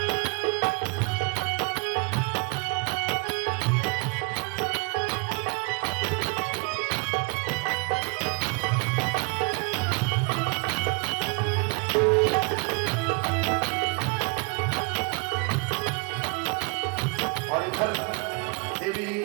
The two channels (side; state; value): left; quieter; 29.7 dB